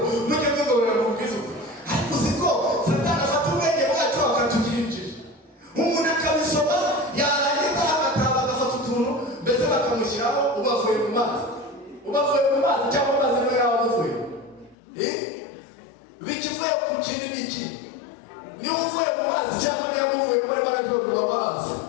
mujye mwigobera mu bwiza ukuri. Ariko uzi ko Satani afata ubwenge bwacu akatugira injiji. Umuntu akabisoma yarangiza agataba agafata utuntu mbese bakamushyiraho ubavuye mu mazi cyangwa amazi niwe yaba avuye. Bikivuye ku kindi n'iki niba uvuye mu mazi cyangwa niba uvuye muri barabyo babaza.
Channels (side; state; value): right; drops out; at 14.8 s